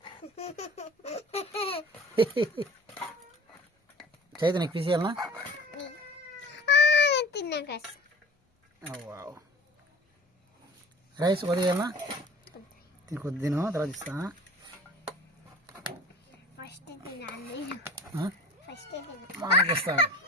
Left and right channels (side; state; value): both; normal; correlation 0.43